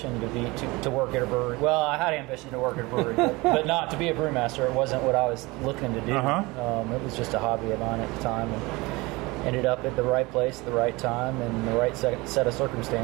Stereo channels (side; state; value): left; quieter; 23.4 dB